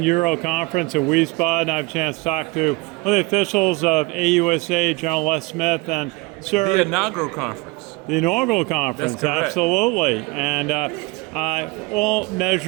Euro Conference in Wiesbaden. I have a chance to talk to one of the officials of AUSA, General Les Smith, and Sir. The inaugural conference. The inaugural conference, absolutely. And all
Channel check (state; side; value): quieter; left; 24.5 dB